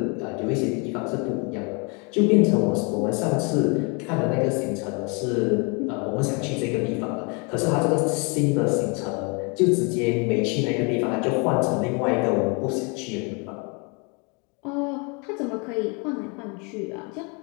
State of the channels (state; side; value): quieter; right; 32.6 dB